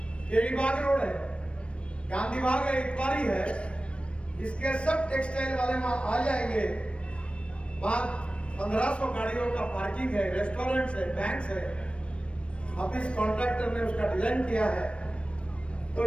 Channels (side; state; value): right; late; 0.060 ms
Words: केरीबाग रोड है, गांधी बाग है, इतवारी है, इसके सब टेक्सटाइल वाले वहां आ जाएंगे। वहां 1500 गाड़ियों का पार्किंग है, रेस्टोरेंट्स है, बैंक्स है। अब इस कॉन्ट्रैक्टर ने उसका डिजाइन किया है तो